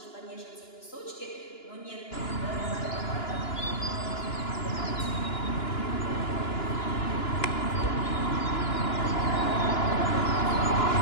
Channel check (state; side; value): late; right; 2.9 ms